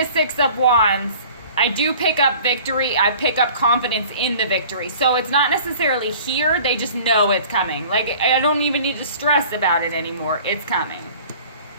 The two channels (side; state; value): both; inverted; correlation -0.47